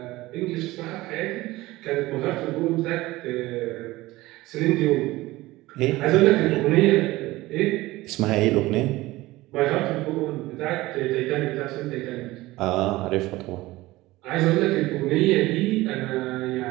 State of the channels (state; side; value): quieter; left; 18.7 dB